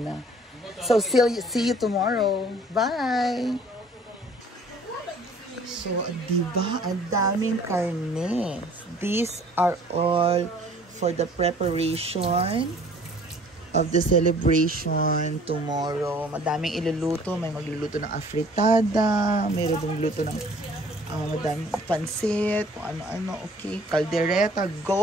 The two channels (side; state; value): both; normal; correlation 0.54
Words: na. So, see you tomorrow. Bye! So, diba? Ang daming karne. These are all for the preparation of the celebration tomorrow. Madaming iluluto. May magluluto ng afritada. Mayroon dong luto ng madaming pansit. Kung ano-ano. Okay. Caldereta.